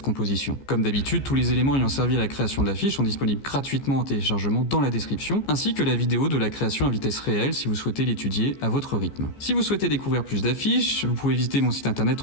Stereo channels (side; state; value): right; late; 15 ms